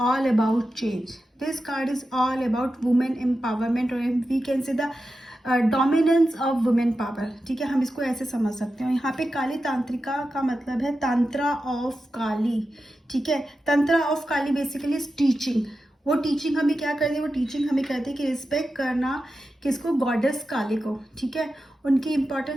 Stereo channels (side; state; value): both; normal; correlation 0.91